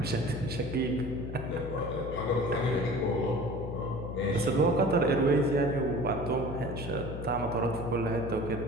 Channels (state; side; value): noise; left; hum, 7 dB below the sound